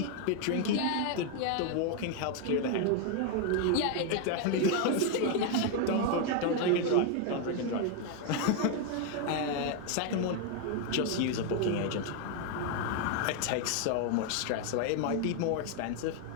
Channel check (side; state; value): both; different; correlation 0.01